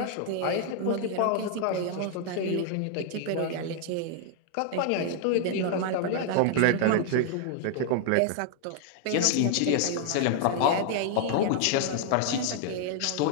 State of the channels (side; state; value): both; different; correlation 0.00